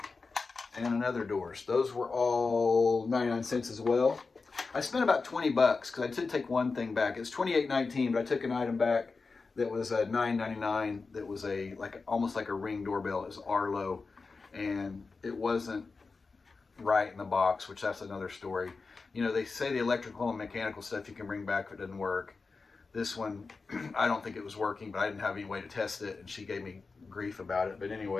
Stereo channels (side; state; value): right; quieter; 4.3 dB